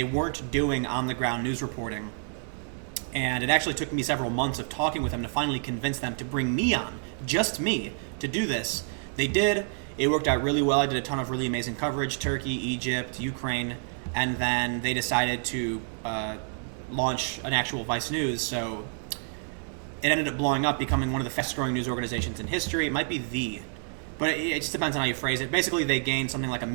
weren't doing on-the-ground news reporting, and it actually took me several months of talking with them to finally convince them to bring me on, just me, to do this. They did. It worked out really well. I did a ton of really amazing coverage: Turkey, Egypt, Ukraine, and then they decided to launch an actual Vice News, so it ended up blowing up, becoming one of the fastest-growing news organizations in history. It might be but it just depends on how you phrase it. Basically, they gained something like 1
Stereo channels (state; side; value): silent; left; 59 dB below the other